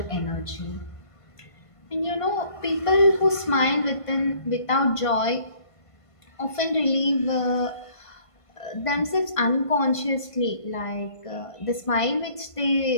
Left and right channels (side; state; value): right; late; 1.5 ms